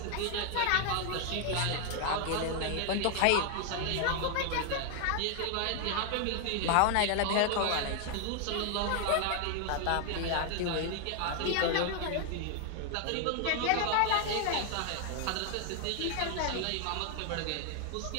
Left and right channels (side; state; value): both; different; correlation 0.00